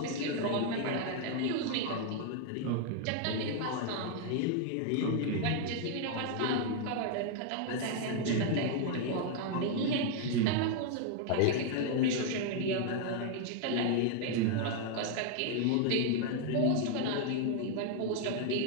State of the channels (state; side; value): different; both; correlation 0.00